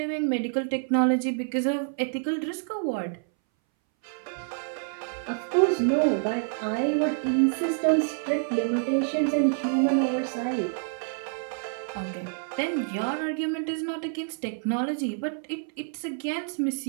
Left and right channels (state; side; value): silent; left; 60 dB below the other